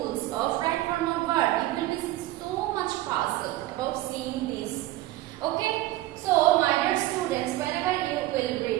of right form of verb. You will be so much puzzled about seeing this. Okay, so my dear students, whenever you will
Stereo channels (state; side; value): quieter; left; 16.4 dB